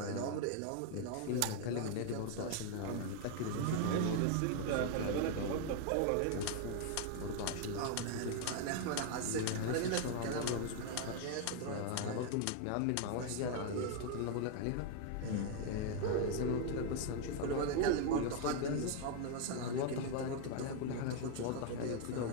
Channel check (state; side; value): different; both; correlation 0.00